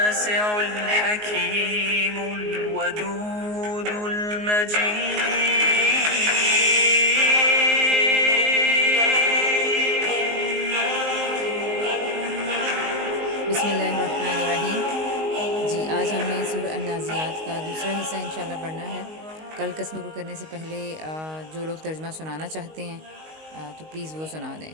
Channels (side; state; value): left; late; 19 ms